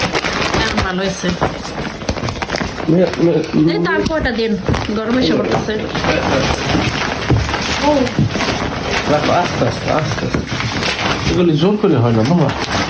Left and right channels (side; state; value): both; identical; correlation 1.00